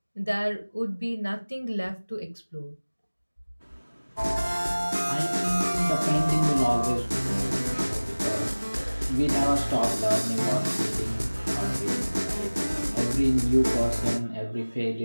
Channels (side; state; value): both; inverted; correlation -1.00